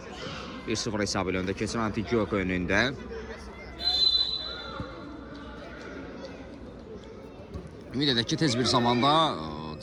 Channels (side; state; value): both; identical; correlation 1.00